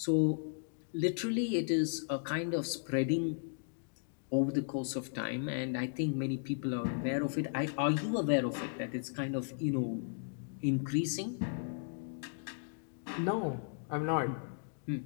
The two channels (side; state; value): right; silent; digital silence